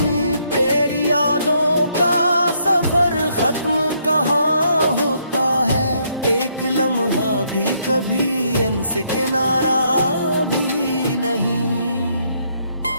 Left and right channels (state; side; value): inverted; both; correlation -0.72